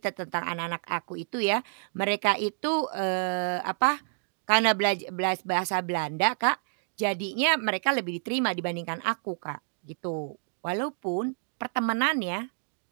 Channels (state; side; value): silent; left; digital silence